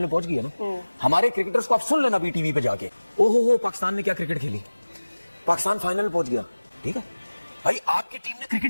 पहुंच गई है ना, हमारे क्रिकेटर्स को आप सुन लेना भी टीवी पे जाके, ओहो हो पाकिस्तान ने क्या क्रिकेट खेली, पाकिस्तान फाइनल में पहुंच गया। ठीक है भाई, आपकी टीम ने क्रिकेट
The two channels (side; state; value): both; inverted; correlation -1.00